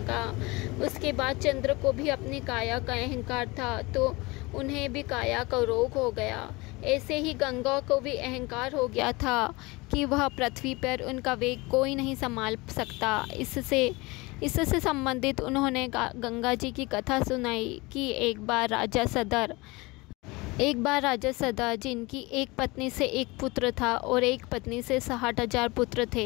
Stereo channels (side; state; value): right; quieter; 23.8 dB